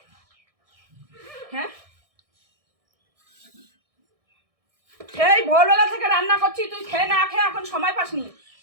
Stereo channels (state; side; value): late; left; 1.6 ms